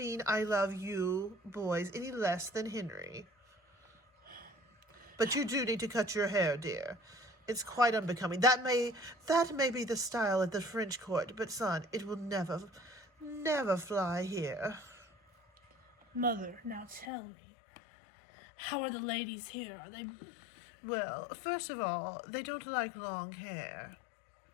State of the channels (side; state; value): right; drops out; at 17.1 s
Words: I love you boys any less than Henry. But you do need to cut your hair, dear. It's quite unbecoming. That may be the style at the French court, but son, it will never fly here. Mother, now tell me, how are the ladies here? Are they... Well, first of all, they don't like long hair.